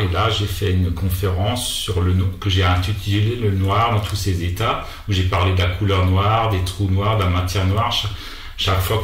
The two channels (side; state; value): both; identical; correlation 1.00